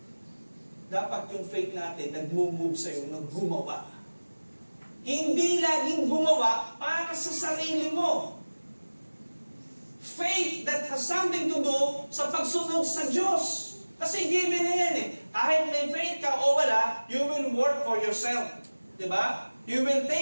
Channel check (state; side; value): inverted; both; correlation -1.00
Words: Dapat yung faith natin nag-move sa'yo, nag-gumawa. Hindi laging gumawa para sa sarili mo. Faith that has something to do sa pagsunod sa Diyos. Kasi given na yan Kahit may faith ka o wala, you will work for yourself. Diba? You will